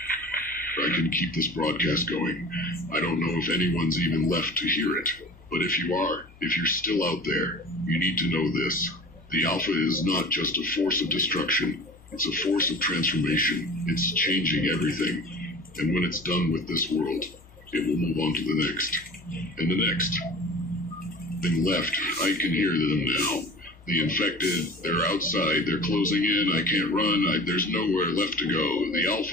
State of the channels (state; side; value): normal; both; correlation 0.39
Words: I can keep this broadcast going. I don't know if anyone's even left to hear it. But if you are, if you're still out there, you need to know this. The Alpha is not just a force of destruction. It's a force of transformation. It's changing everything. And when it's done with this world, it will move on to the next. And the next. Thing left. I can hear them now. The infected, they're outside. They're closing in. I can't run. There's nowhere left to go. The